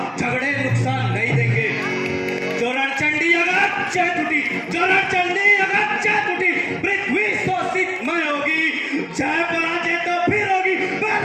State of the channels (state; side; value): identical; both; correlation 1.00